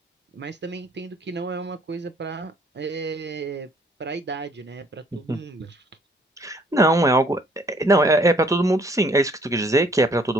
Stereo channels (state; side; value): normal; both; correlation 0.61